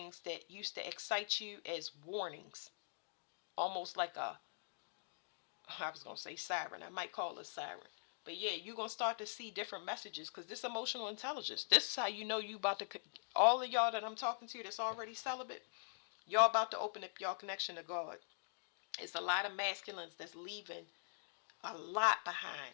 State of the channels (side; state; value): right; silent; digital silence